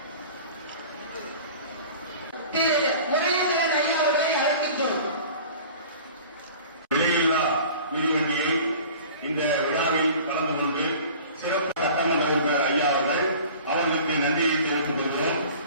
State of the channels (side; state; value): both; inverted; correlation -0.43